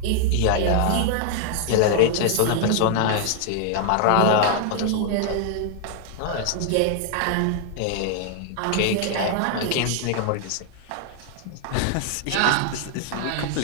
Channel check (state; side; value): different; both; correlation 0.00